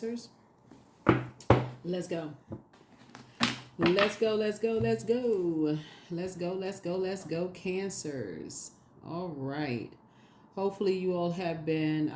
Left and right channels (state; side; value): identical; both; correlation 1.00